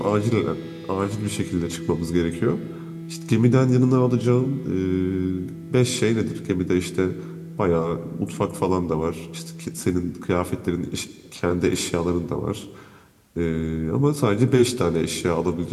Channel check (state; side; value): identical; both; correlation 1.00